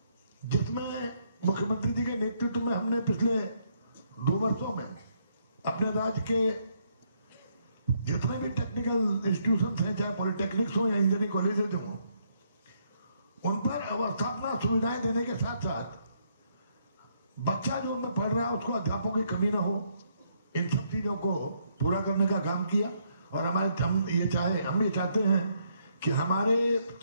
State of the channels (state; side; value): inverted; both; correlation -0.73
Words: जिसमें मुख्यमंत्री जी के नेतृत्व में हमने पिछले 2 वर्षों में अपने राज्य के जितने भी टेक्निकल इंस्टीट्यूशंस हैं, चाहे पॉलिटेक्निक्स हो या इंजीनियरिंग कॉलेजेस हो, उन पर अवस्थापना सुविधाएं देने के साथ साथ बच्चा जो उनमें पढ़ रहा है उसको अध्यापकों की कमी ना हो, इन सब चीजों को पूरा करने का काम किया। और हम ये चाहते हैं कि हमारे